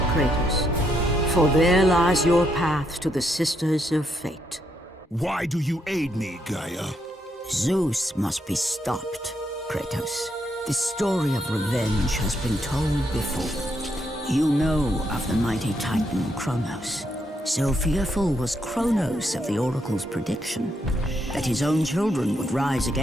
Kratos, for there lies your path to the Sisters of Fate. Why do you aid me, Gaia? Zeus must be stopped, Kratos. The story of revenge has been told before. You know of the mighty Titan Kronos. So fearful was Kronos of the Oracle's prediction that his own children would rise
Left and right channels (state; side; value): normal; both; correlation 0.77